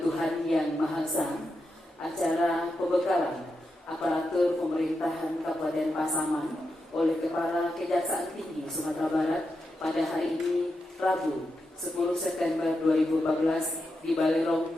Tuhan Yang Maha Esa. Acara pembekalan aparatur pemerintahan Kabupaten Pasaman oleh Kepala Kejaksaan Tinggi Sumatera Barat pada hari ini Rabu 10 September 2014 di Balirong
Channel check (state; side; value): normal; both; correlation 0.86